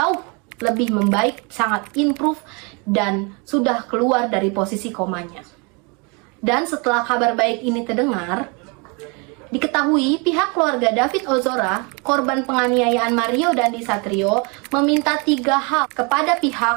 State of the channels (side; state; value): left; quieter; 31.7 dB